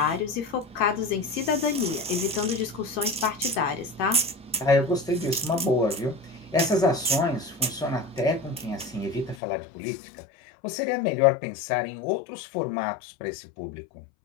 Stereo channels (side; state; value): right; drops out; at 9.3 s